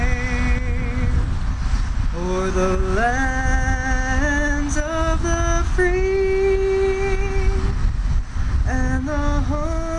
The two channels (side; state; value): both; identical; correlation 1.00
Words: o'er the lands of the free and the